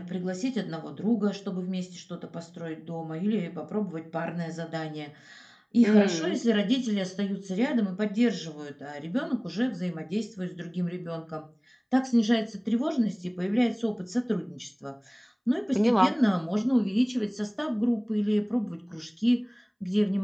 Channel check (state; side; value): identical; both; correlation 1.00